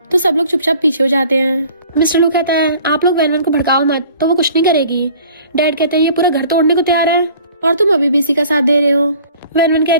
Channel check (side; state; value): both; inverted; correlation -0.50